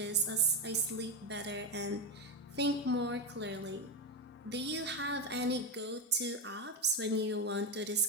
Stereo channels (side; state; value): both; normal; correlation 0.11